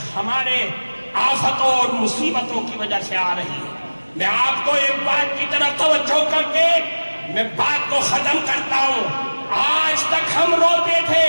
ہمارے آفتوں اور مصیبتوں کی وجہ سے آ رہی ہے. میں آپ کو ایک بات کی طرف توجہ کر کے میں بات کو ختم کرتا ہوں. آج تک ہم روتے تھے,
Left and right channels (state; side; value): inverted; both; correlation -1.00